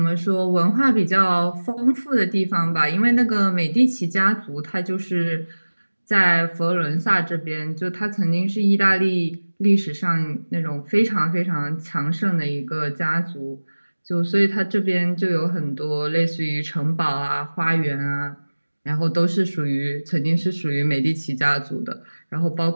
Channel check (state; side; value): inverted; both; correlation -1.00